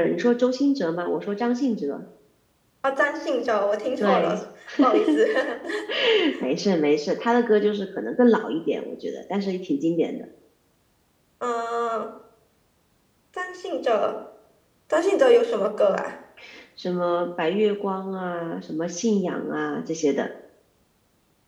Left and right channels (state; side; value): identical; both; correlation 1.00